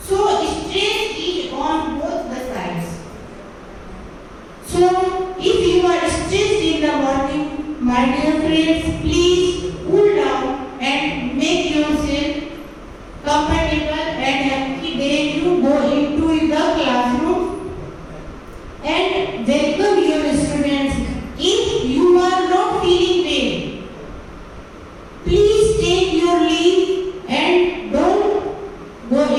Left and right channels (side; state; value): both; identical; correlation 1.00